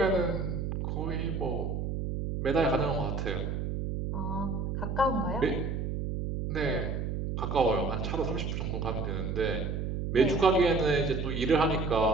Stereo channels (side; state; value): right; noise; hum, 2 dB below the sound